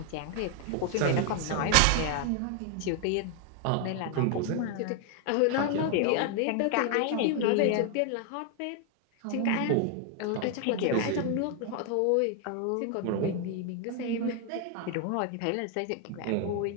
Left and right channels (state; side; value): different; both; correlation 0.00